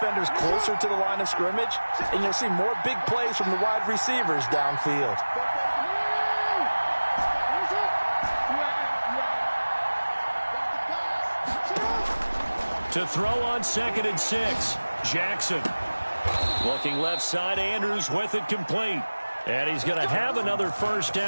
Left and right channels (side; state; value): both; inverted; correlation -1.00